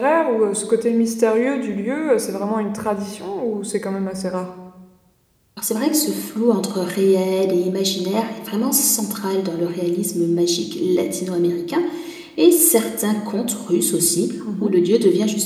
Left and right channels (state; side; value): identical; both; correlation 1.00